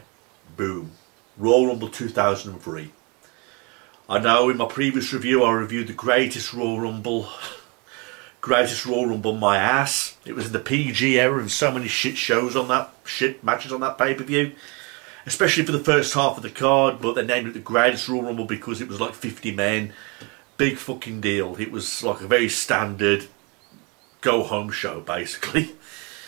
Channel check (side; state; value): left; quieter; 30.1 dB